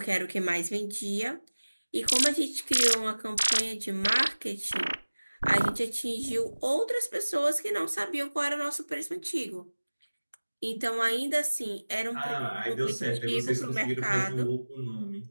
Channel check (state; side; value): inverted; both; correlation -1.00